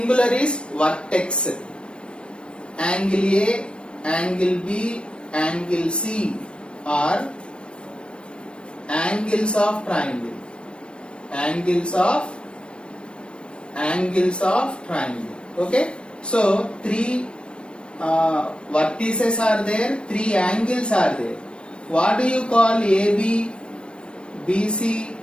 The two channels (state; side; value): late; right; 0.057 ms